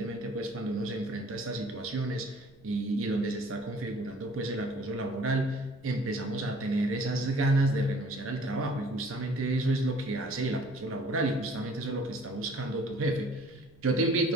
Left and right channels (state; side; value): noise; right; rumble, 27 dB below the sound